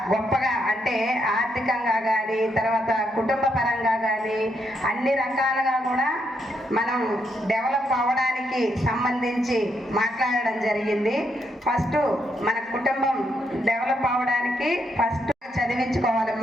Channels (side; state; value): both; normal; correlation 0.78